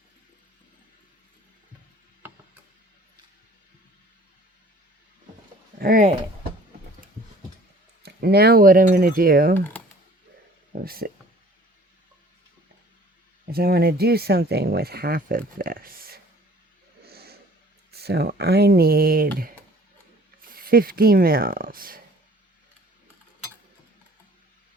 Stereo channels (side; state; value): both; normal; correlation 0.51